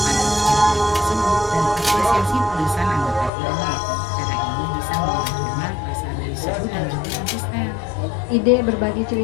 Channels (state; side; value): drops out; right; at 3.3 s